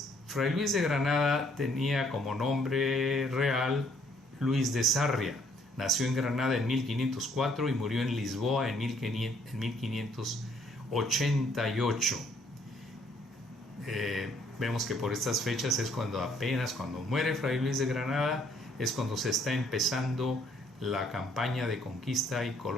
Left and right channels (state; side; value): normal; both; correlation 0.65